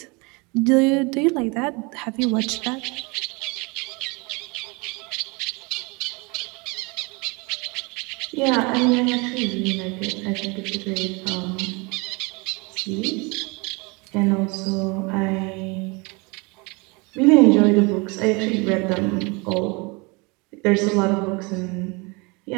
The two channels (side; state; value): left; quieter; 28.3 dB